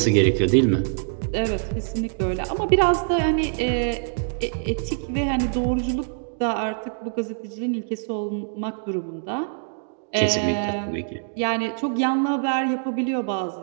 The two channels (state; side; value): silent; left; digital silence